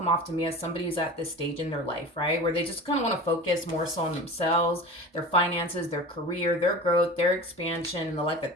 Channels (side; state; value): both; normal; correlation 0.34